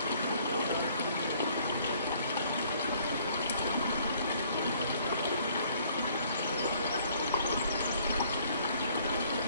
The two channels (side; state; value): both; inverted; correlation -0.61